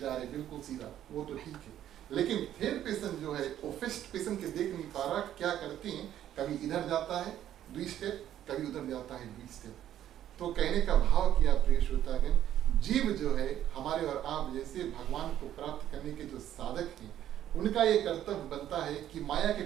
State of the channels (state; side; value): quieter; left; 11.5 dB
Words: रहे, बिल्कुल सीधा, वो तो ठीक है, लेकिन थर्ड पर्सन जो है वो फर्स्ट पर्सन के देख नहीं पा रहा, क्या करते हैं, कभी इधर जाता है 2 स्टेप, कभी उधर जाता है 2 स्टेप। तो कहने का भाव किया प्रिय श्रोतागण, जीव जो है हमारे और आप जैसे भगवान को प्राप्त करने के जो साधक हैं, उनका ये कर्तव्य बनता है कि माया के